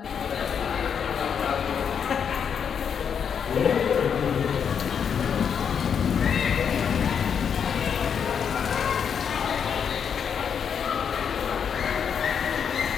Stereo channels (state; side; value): quieter; right; 7.3 dB